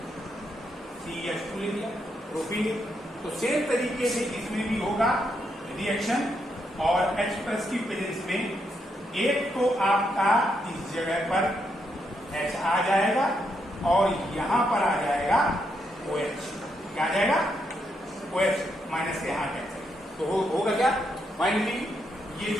CH2 ले लिया प्रोपीन। तो सेम तरीके से इसमें भी होगा रिएक्शन, और H प्लस की प्रेजेंस में एक तो आपका इस जगह पर H आ जाएगा और यहां पर आ जाएगा OH। क्या आ जाएगा? OH माइनस से यहां H। तो होगा क्या? फाइनली ये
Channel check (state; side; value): normal; both; correlation 0.79